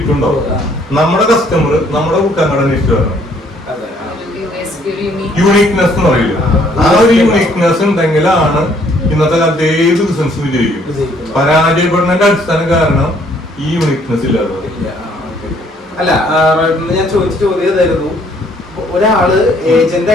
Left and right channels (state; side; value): normal; both; correlation 0.64